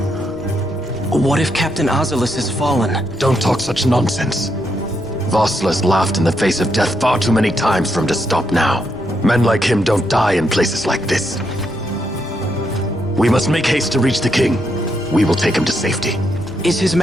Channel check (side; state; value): both; normal; correlation 0.79